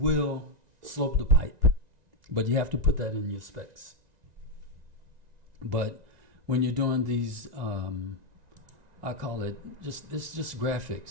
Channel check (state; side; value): late; left; 1.9 ms